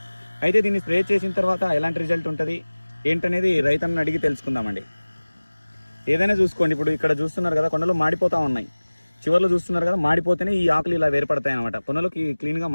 అయితే దీన్ని స్ప్రే చేసిన తర్వాత ఎలాంటి రిజల్ట్ ఉంటుంది ఏంటనేది రైతన్నని అడిగి తెలుసుకుందామండి. ఏదైనా చూసుకోండి, ఇప్పుడు ఇక్కడ చూస్తున్నారు కదా కొనలు మాడిపోతూ ఉన్నాయి, చివర్లో చూస్తున్నారు కదా మాడిపోతేనే ఈ ఆకులు ఇలా వేరుపడతాయి అనమాట, కొనలకి క్లీన్గా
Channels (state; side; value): inverted; both; correlation -1.00